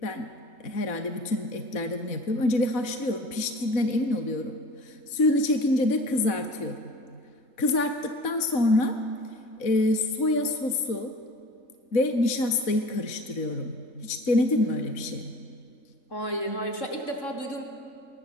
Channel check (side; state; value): right; late; 4.0 ms